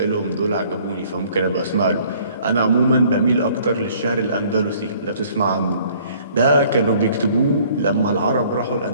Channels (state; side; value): inverted; both; correlation -0.57